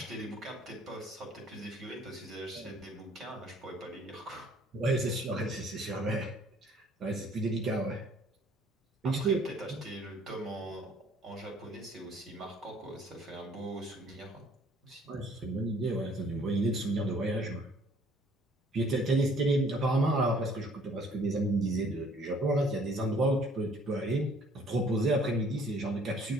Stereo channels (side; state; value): both; normal; correlation 0.58